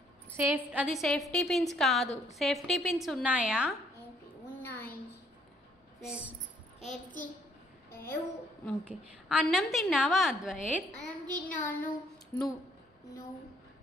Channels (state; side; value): normal; both; correlation 0.65